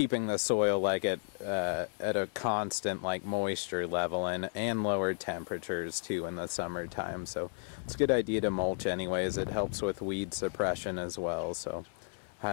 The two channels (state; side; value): silent; right; 56 dB below the other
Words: the soil like at a constant moisture level and lower temperatures too in the summertime. So it's a good idea to mulch anyways. It helps with weed suppression as well. So